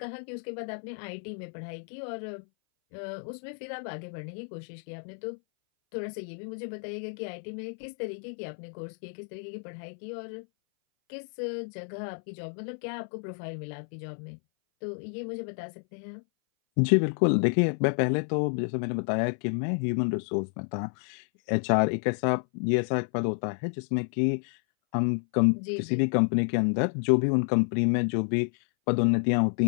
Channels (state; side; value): silent; right; 58 dB below the other